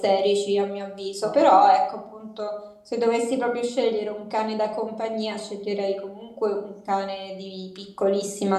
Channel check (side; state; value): both; identical; correlation 1.00